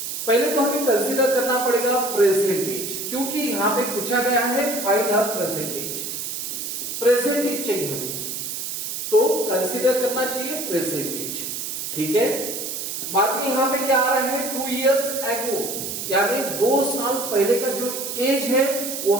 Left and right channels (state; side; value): noise; right; hiss, 5 dB below the sound